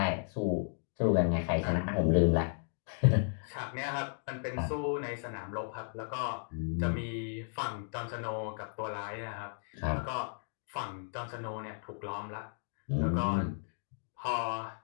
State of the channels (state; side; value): silent; right; digital silence